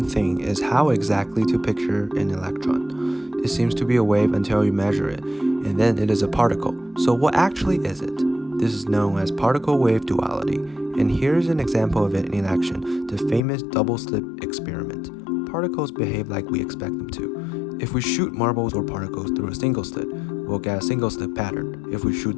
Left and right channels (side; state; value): right; drops out; at 13.4 s